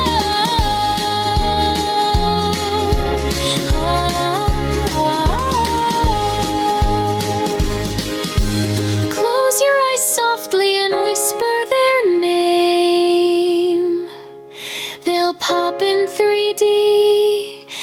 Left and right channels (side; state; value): both; identical; correlation 1.00